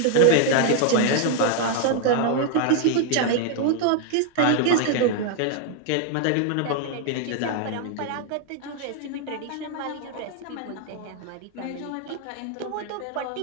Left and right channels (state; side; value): different; both; correlation 0.00